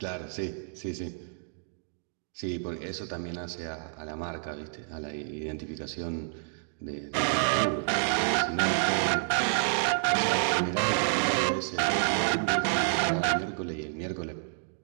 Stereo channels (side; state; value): left; silent; digital silence